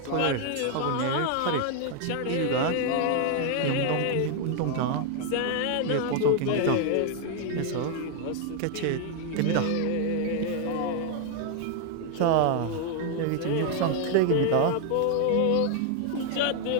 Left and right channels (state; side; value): different; both; correlation 0.00